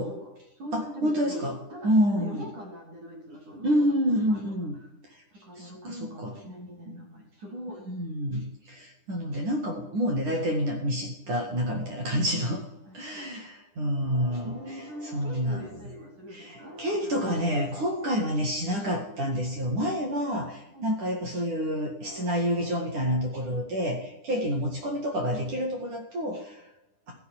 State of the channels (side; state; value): left; late; 10 ms